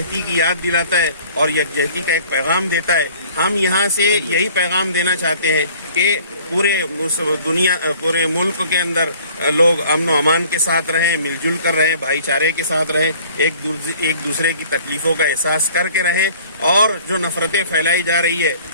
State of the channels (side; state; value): both; inverted; correlation -0.51